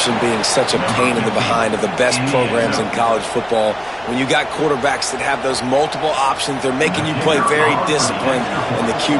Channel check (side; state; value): left; noise; rumble, 28 dB below the sound